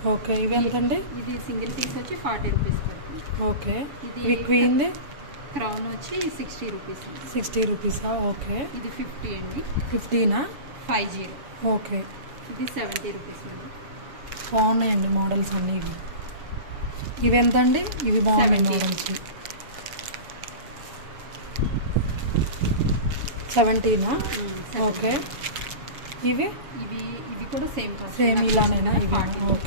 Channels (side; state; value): left; late; 7.1 ms